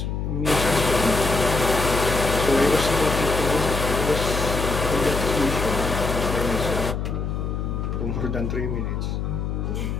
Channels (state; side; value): noise; left; hum, 2 dB below the sound